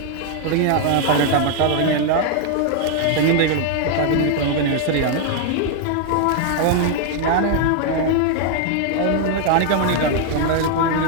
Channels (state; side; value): different; both; correlation 0.00